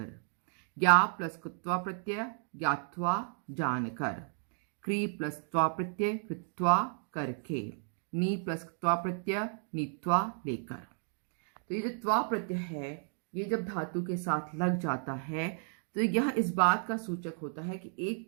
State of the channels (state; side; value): silent; left; 56 dB below the other